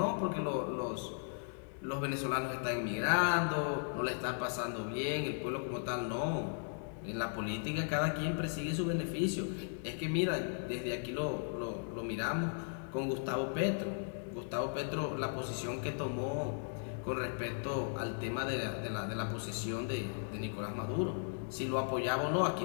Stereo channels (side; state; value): right; silent; digital silence